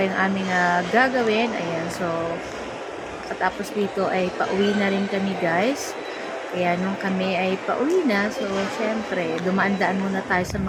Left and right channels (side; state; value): both; identical; correlation 1.00